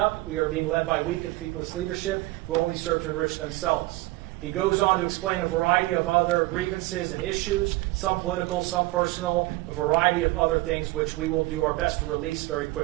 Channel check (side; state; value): left; quieter; 20.3 dB